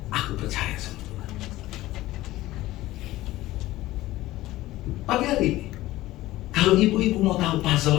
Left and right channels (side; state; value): right; quieter; 16.7 dB